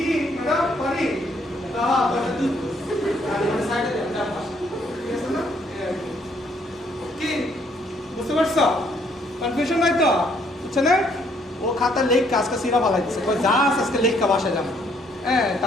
ম্যাডাম পারি তুই সাইডে যা ঠিক আছে না কি বুঝতে পারছো কনফিউশন নাই তো বুঝছে না ও খাতা লেখ কাজকা সিরা বালাই দিচ্ছে কই যা আছে আজকে লেখ কা বাসায় যাবো হ্যাঁ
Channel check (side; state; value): both; normal; correlation 0.67